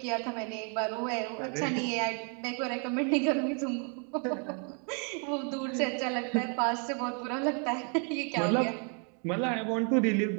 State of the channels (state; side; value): quieter; left; 39.7 dB